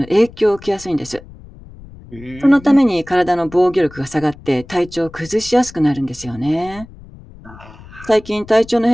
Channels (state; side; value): noise; left; rumble, 20 dB below the sound